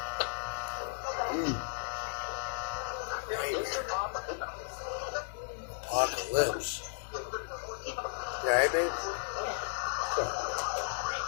Apocalypse. Yeah, hey, babe?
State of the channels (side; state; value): right; silent; digital silence